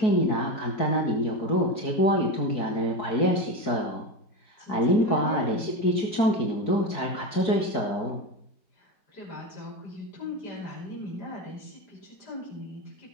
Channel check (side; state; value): right; late; 4.6 ms